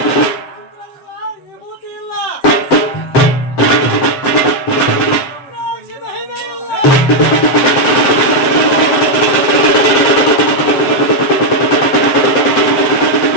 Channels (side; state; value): right; late; 7.5 ms